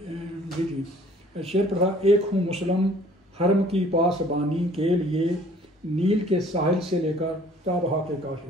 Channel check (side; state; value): both; normal; correlation 0.55